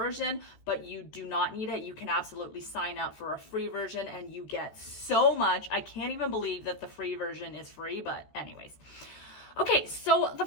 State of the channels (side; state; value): right; late; 14 ms